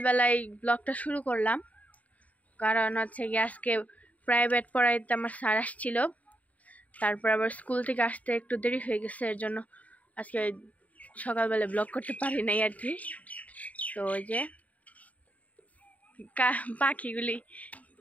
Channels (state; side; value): late; right; 0.071 ms